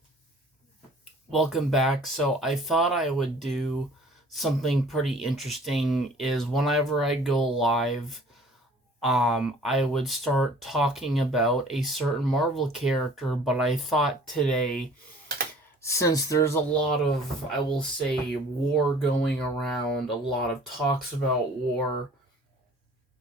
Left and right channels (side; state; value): both; normal; correlation 0.51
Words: welcome back. So I thought I would do something pretty interesting is whenever I go live, I would start talking about a certain Marvel character, but I thought today, since there's a lot of, I will say, war going around, a lot of talks about war,